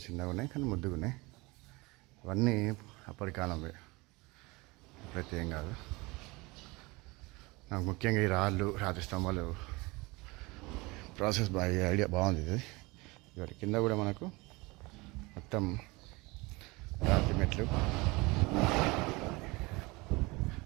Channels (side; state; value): left; quieter; 24.1 dB